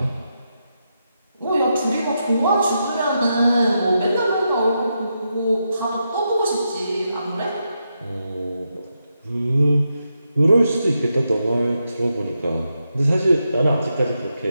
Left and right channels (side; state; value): both; inverted; correlation -0.84